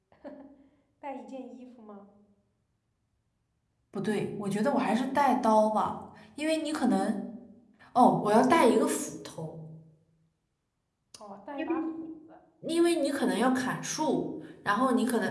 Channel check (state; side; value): identical; both; correlation 1.00